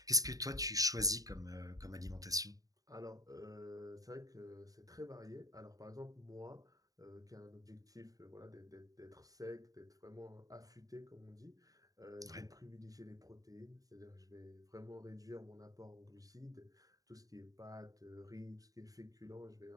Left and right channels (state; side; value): late; left; 0.17 ms